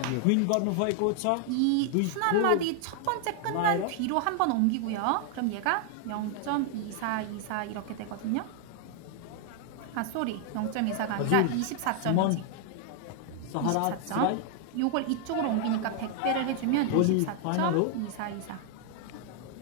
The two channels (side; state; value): both; different; correlation 0.00